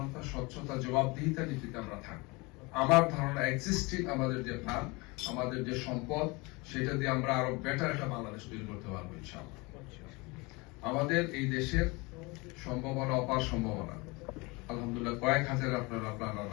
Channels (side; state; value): right; quieter; 25.8 dB